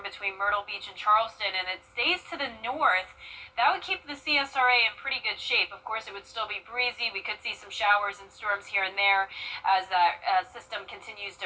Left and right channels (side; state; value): both; identical; correlation 1.00